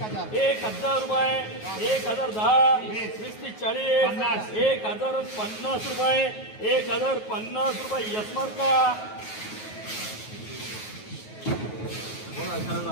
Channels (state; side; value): late; right; 9.4 ms